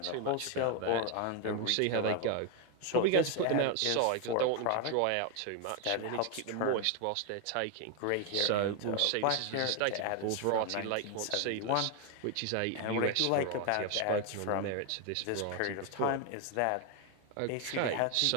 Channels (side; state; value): both; different; correlation 0.01